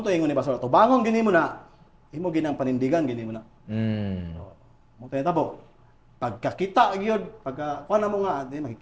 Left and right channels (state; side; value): identical; both; correlation 1.00